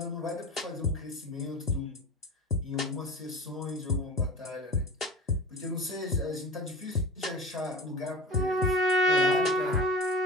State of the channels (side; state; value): both; normal; correlation 0.33